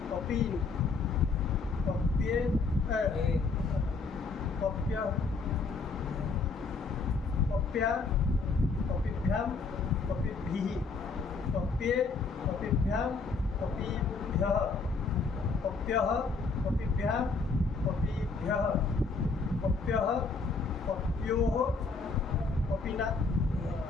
पपीन् पप्ये पप्य पप्या पपीभ्यां पपीभिः पप्ये पपीभ्यां पपीभ्यः पप्यः पपीभ्यां पपीभ्यः पप्यः पप्योः पपीना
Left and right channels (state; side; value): quieter; right; 4.3 dB